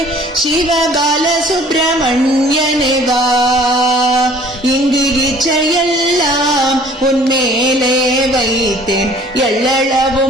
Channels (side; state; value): both; normal; correlation 0.53